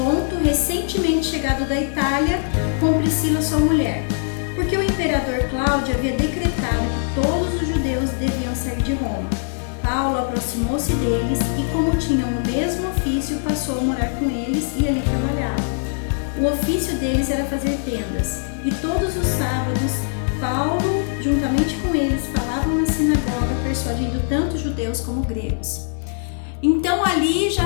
recentemente chegado da Itália, com Priscila, sua mulher. Porque o imperador Cláudio havia decretado que todos os judeus deviam sair de Roma. Paulo aproximou-se deles e, como tinham o mesmo ofício, passou a morar com eles e ali trabalhava. O ofício deles era fazer tendas, e todos os sábados, Paulo, juntamente com eles, falavam na sinagoga, persuadindo tanto judeus como gregos. Então ali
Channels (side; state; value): right; silent; 65 dB below the other